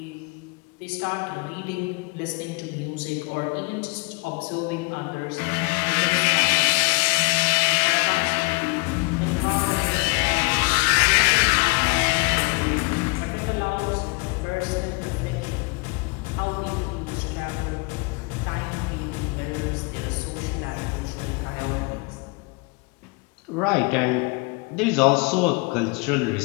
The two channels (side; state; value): right; quieter; 29.2 dB